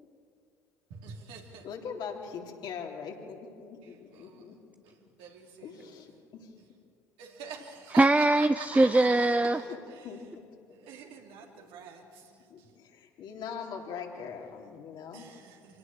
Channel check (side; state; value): both; normal; correlation 0.88